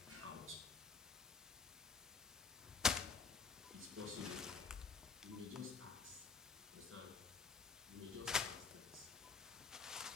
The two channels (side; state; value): right; quieter; 5.2 dB